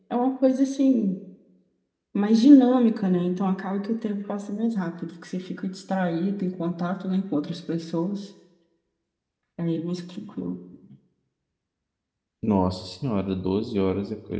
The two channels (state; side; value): identical; both; correlation 1.00